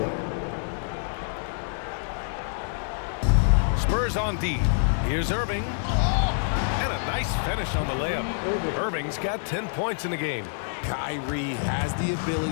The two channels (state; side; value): silent; right; 60 dB below the other